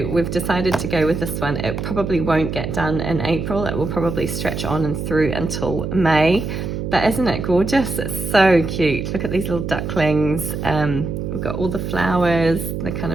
we've decided to go with this one. It probably won't get done in April. It will probably stretch on and through until May. But isn't it gorgeous? It's so cute. Look at these little ducklings. We've got all the flowers, the kind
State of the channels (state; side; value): noise; right; hum, 4 dB below the sound